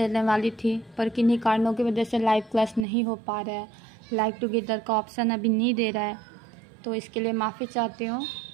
वाली थी पर किन्हीं कारणों की वजह से लाइव क्लास नहीं हो पा रहा है। लाइव टुगेदर का ऑप्शन अभी नहीं दे रहा है, तो इसके लिए माफ़ी चाहती हूँ।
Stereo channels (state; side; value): drops out; left; at 2.9 s